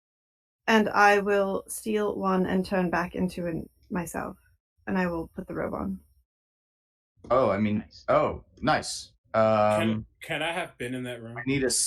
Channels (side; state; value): both; identical; correlation 1.00